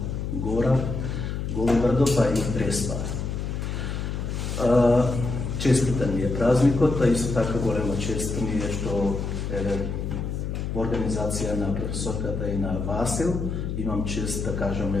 Гора, Голобрдо, па и Преспа. Честитен ми е празникот, а исто така голема чест ми е што во организација на професорката и на Васил имам чест да кажам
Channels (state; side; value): noise; left; hum, 3 dB below the sound